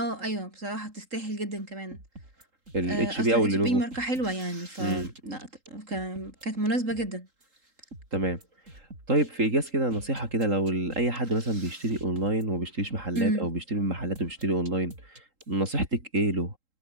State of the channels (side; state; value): left; late; 3.8 ms